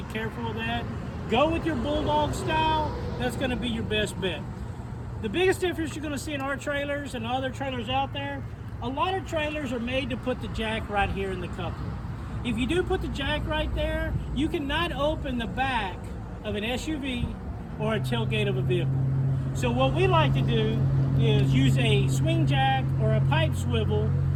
careful of that. Go with your Bulldog style. That's going to be your best bet. The biggest difference you're going to see in our trailers and other trailers out there, a lot of trailers are made to put the jack right here in the coupler. If you do put the jack right there, you cannot open the back of an SUV or a tailgate of a vehicle. So what we like to do is use a swing jack or a pipe swivel,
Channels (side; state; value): both; identical; correlation 1.00